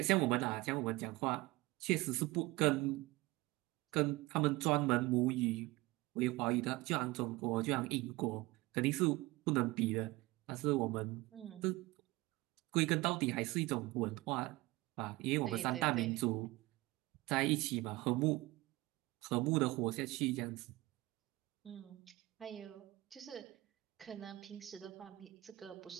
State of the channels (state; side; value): quieter; left; 20.6 dB